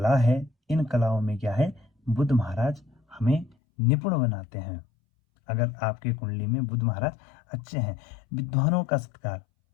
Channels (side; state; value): right; drops out; at 3.6 s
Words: है, इन कलाओं में क्या है, बुध महाराज हमें निपुण बनाते हैं। अगर आपके कुंडली में बुध महाराज अच्छे हैं, विद्वानों का सत्कार,